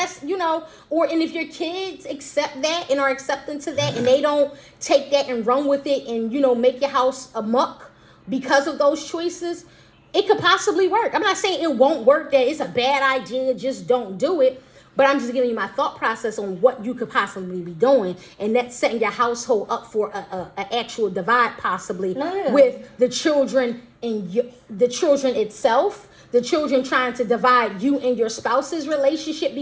and if your kids accept that and are accepting to that, and they don't take that and run with it and, make your house a muck because of those choices, it could possibly work. I'm not saying it won't work, that it's a bad idea, just don't do it. But I'm just giving you my thought process on what you could possibly be doing, and that's setting your household up for a actual divide, possibly with the children and the children itself. The children trying to divide you and your spouse's relationship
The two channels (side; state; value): both; identical; correlation 1.00